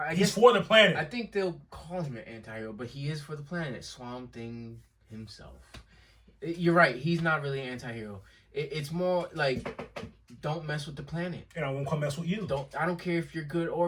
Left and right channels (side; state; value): both; identical; correlation 1.00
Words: he's guess, for the planet. I think they'll call him an anti-hero, but he is for the planet. Swamp Thing himself. You're right. He's not really an anti-hero. It's more like, don't mess with the planet. And I won't come mess with you. I don't care if you're good